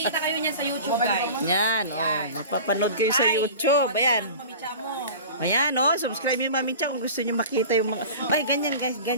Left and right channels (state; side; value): inverted; both; correlation -0.37